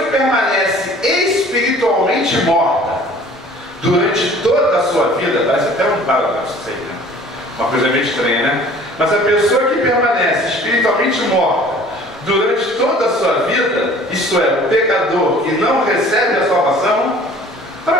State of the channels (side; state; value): both; normal; correlation 0.50